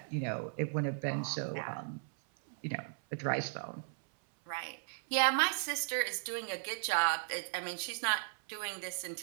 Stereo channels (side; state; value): left; silent; 54 dB below the other